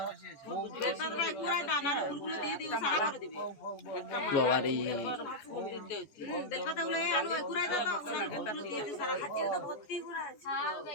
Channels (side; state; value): right; late; 14 ms